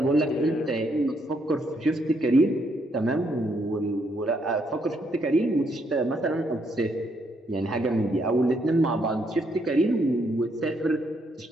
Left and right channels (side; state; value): both; normal; correlation 0.74